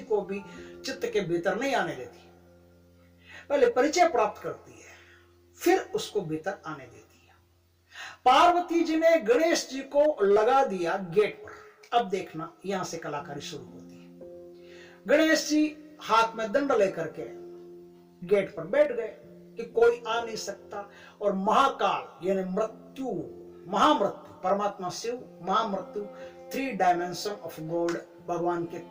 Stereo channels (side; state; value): both; identical; correlation 1.00